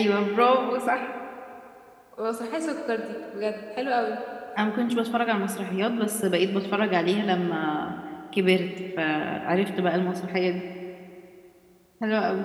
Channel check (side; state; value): both; identical; correlation 1.00